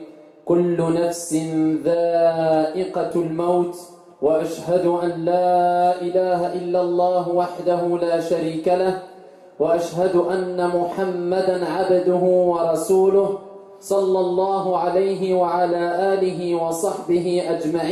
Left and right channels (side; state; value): both; identical; correlation 1.00